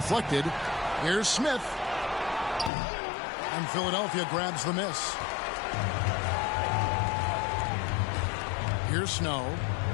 Here's Smith. And Philadelphia grabs the miss. Here's Snow.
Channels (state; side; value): drops out; right; at 2.7 s